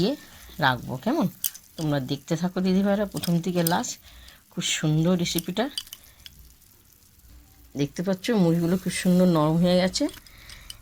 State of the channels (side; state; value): both; identical; correlation 1.00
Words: রাখবো। কেমন? তোমরা দেখতে থাকো দিদিভাইরা প্রথম থেকে লাস্ট। খুব সুন্দর রেসিপিটা। দেখতে পাচ্ছ মুড়িগুলো খুব সুন্দর নরম হয়ে গেছে।